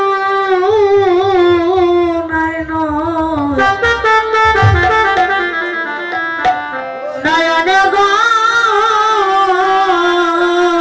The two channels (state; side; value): identical; both; correlation 1.00